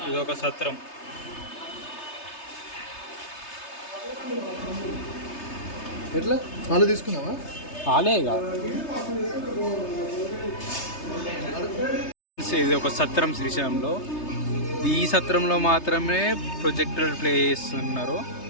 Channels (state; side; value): late; right; 3.3 ms